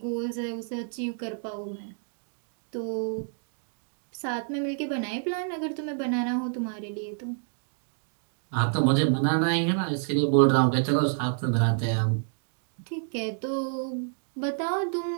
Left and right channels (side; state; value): left; silent; 59 dB below the other